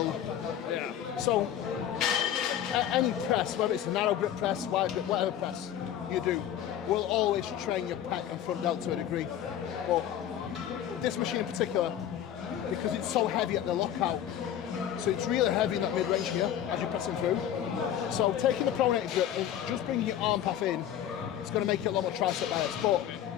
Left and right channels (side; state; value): right; quieter; 10.5 dB